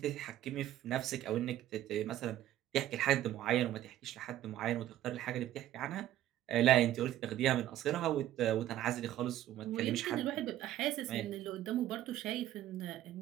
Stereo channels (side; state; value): left; quieter; 13.1 dB